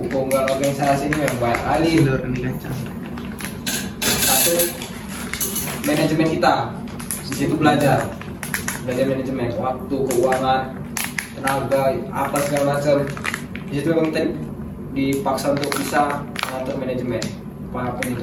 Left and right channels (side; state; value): both; identical; correlation 1.00